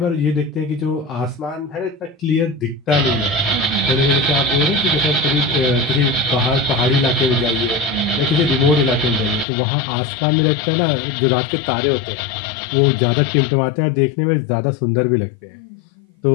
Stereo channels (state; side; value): drops out; right; at 9.5 s